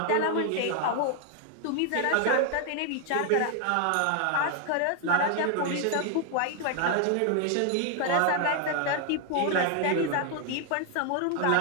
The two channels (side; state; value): both; different; correlation 0.00